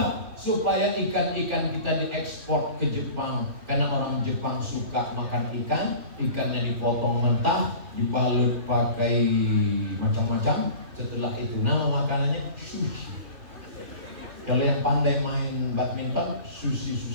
Supaya ikan-ikan kita diekspor ke Jepang. Karena orang Jepang suka makan ikan. Ikannya dipotong mentah, dibalut pakai macam-macam. Setelah itu nama makanannya sushi. Kalau yang pandai main badminton, Susi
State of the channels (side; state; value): left; late; 2.9 ms